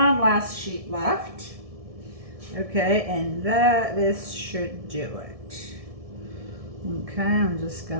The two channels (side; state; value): left; late; 1.7 ms